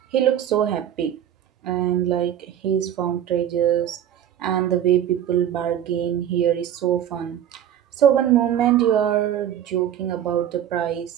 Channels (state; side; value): quieter; left; 10.4 dB